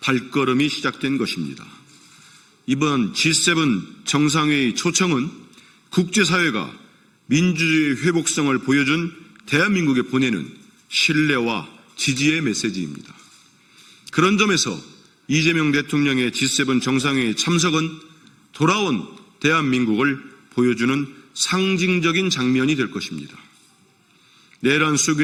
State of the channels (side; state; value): both; identical; correlation 1.00